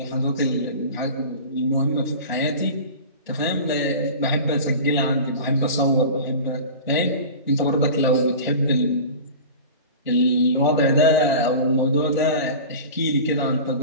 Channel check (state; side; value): inverted; both; correlation -0.35